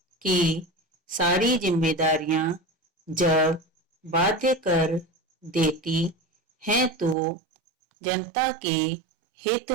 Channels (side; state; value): left; drops out; at 7.2 s